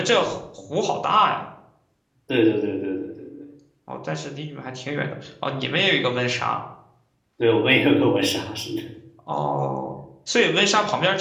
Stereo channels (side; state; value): both; identical; correlation 1.00